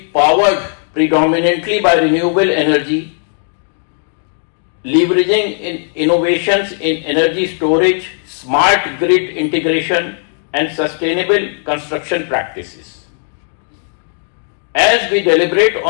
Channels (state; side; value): silent; right; 58 dB below the other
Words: powered predominantly by renewable energy, leveraging innovations in energy storage, smart grid integration and sustainable construction practices. As we deliberate